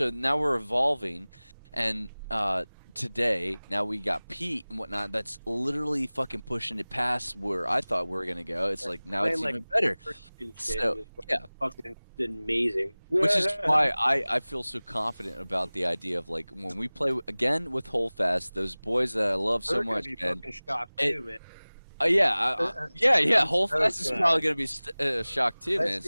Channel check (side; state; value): both; inverted; correlation -1.00